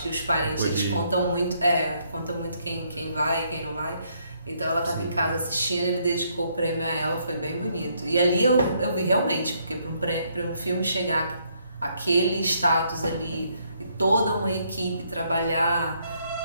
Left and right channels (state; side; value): inverted; both; correlation -0.72